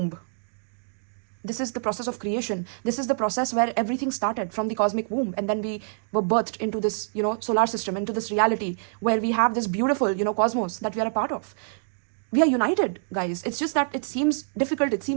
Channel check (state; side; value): silent; left; digital silence